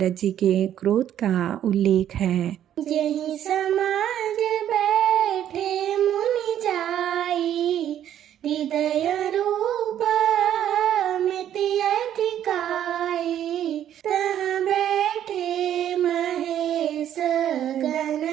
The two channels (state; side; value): quieter; left; 10.7 dB